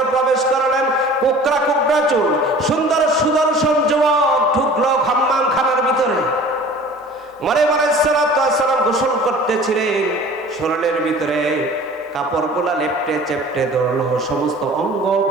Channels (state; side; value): normal; both; correlation 0.45